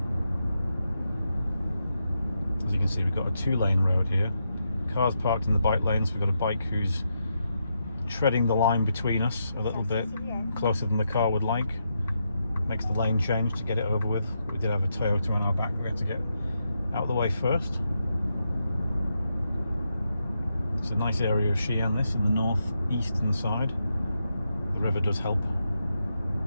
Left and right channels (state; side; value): inverted; both; correlation -0.83